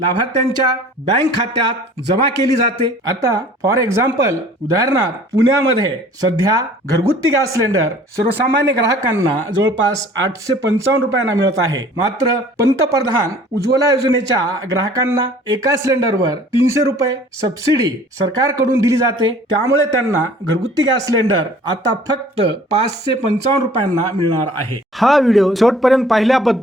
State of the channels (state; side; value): normal; both; correlation 0.50